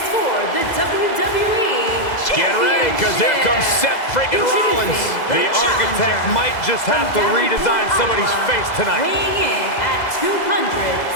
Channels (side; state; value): right; late; 2.0 ms